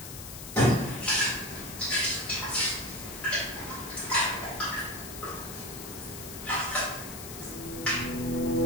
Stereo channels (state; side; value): noise; left; hiss, 11 dB below the sound